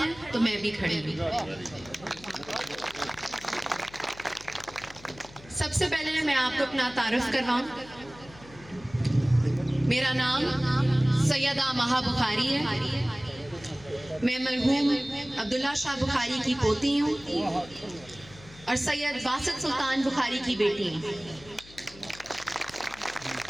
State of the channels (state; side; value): noise; left; hum, 21 dB below the sound